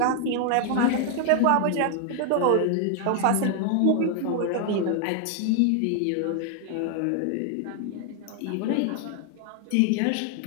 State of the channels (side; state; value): both; different; correlation 0.00